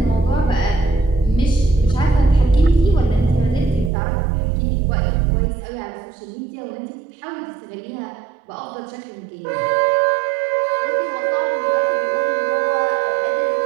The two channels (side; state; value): left; drops out; at 3.9 s